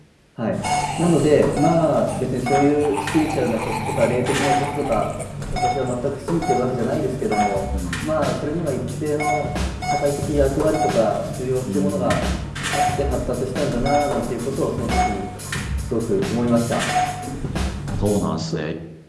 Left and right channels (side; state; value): both; identical; correlation 1.00